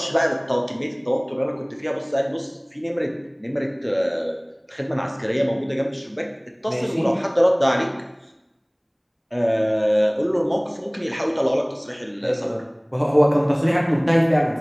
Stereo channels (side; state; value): both; identical; correlation 1.00